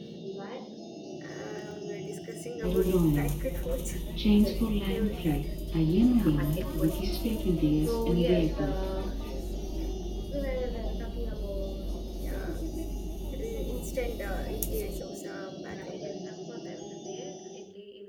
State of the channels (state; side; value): identical; both; correlation 1.00